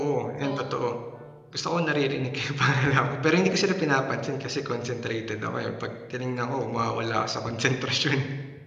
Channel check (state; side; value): identical; both; correlation 1.00